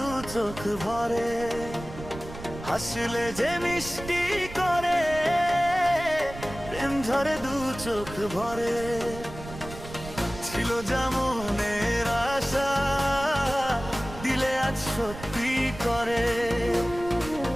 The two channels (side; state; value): right; noise; rumble, 13 dB below the sound